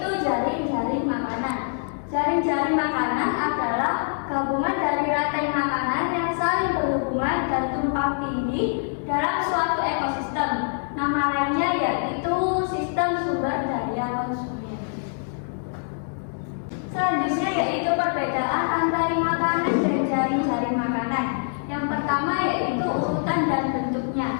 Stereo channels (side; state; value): right; silent; digital silence